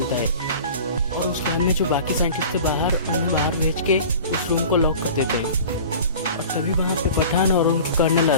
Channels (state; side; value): inverted; both; correlation -0.40